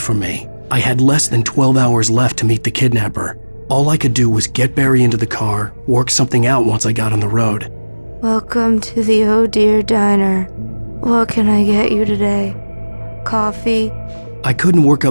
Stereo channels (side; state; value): both; inverted; correlation -1.00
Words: me. I had less than 12 hours left to meet the kidnapper. All I could do was get Barry into the car, work something out once I got on the road. Welcome to the Oh Dear Diner. What can I get you today? Coffee? I couldn't work